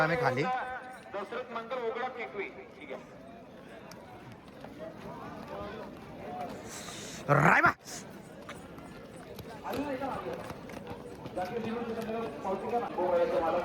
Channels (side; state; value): both; identical; correlation 1.00